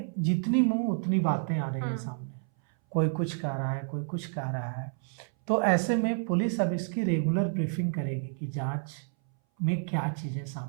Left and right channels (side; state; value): left; silent; 58 dB below the other